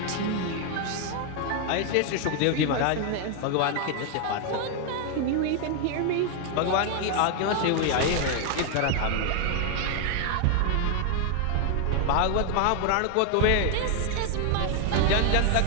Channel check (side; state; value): both; different; correlation 0.00